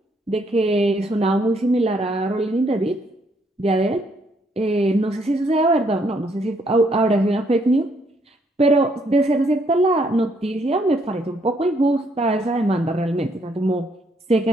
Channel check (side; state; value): both; normal; correlation 0.70